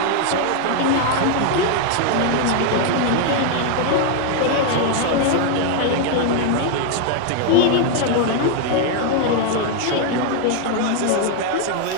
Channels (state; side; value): different; both; correlation 0.00